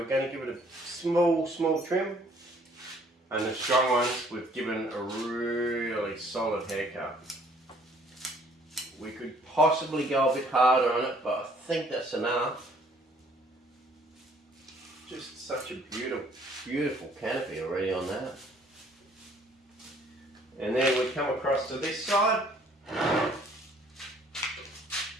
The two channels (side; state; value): both; normal; correlation 0.60